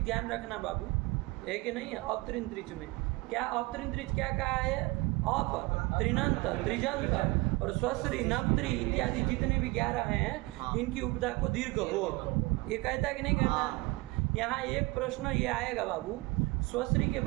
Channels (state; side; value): quieter; left; 23.4 dB